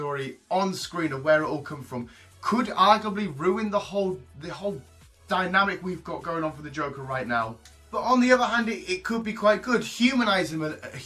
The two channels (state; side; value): identical; both; correlation 1.00